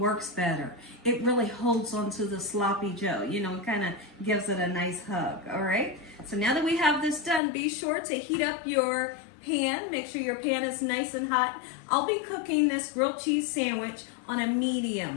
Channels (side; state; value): right; drops out; at 7.4 s